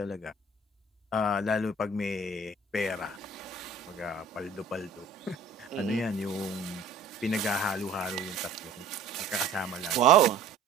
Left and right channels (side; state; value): left; quieter; 3.8 dB